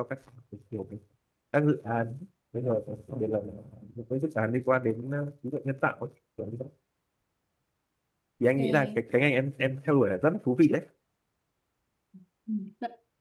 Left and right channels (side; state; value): both; identical; correlation 1.00